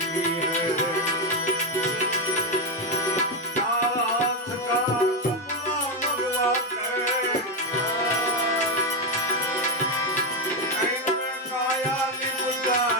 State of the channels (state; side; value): normal; both; correlation 0.08